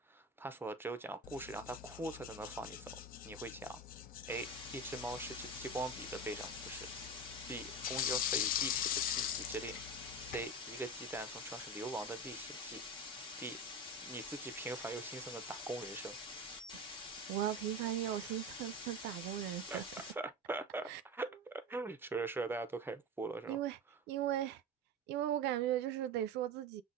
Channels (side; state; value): both; normal; correlation 0.24